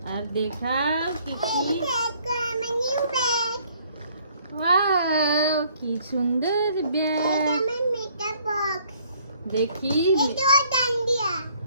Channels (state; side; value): inverted; both; correlation -0.62